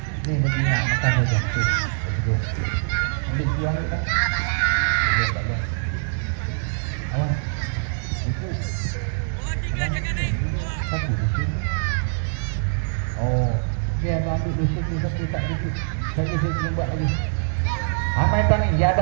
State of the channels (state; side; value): silent; left; digital silence